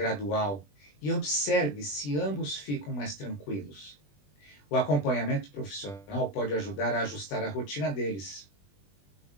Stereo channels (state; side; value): late; right; 20 ms